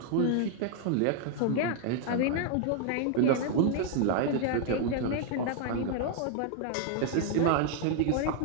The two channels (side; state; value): both; different; correlation 0.00